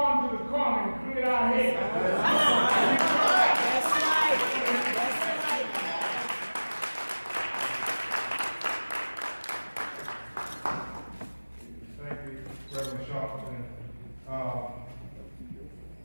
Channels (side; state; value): both; inverted; correlation -1.00